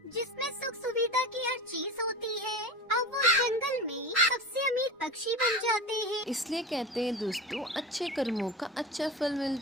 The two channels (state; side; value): normal; both; correlation 0.28